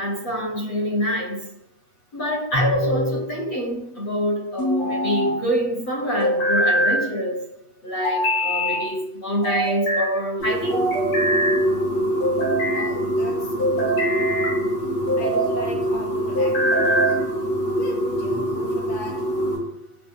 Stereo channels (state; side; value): late; right; 8.2 ms